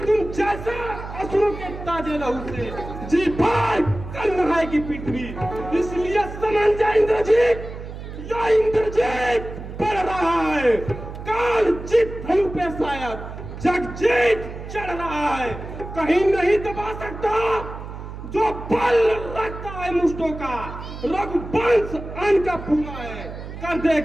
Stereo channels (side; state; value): right; noise; hum, 10 dB below the sound